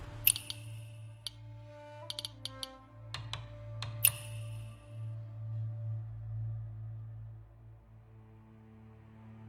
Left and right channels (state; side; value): identical; both; correlation 1.00